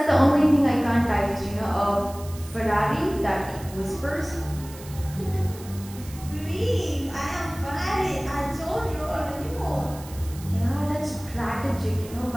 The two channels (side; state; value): right; noise; hiss, 18 dB below the sound